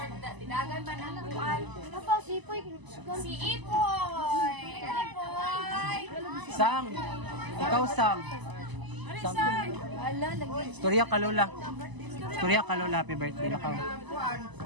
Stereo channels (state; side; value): late; left; 1.0 ms